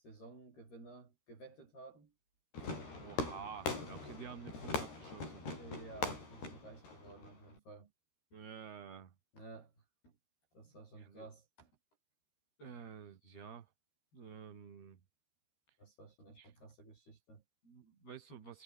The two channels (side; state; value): right; late; 13 ms